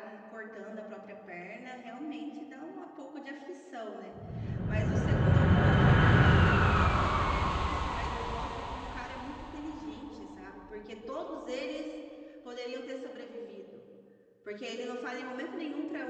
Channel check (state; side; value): identical; both; correlation 1.00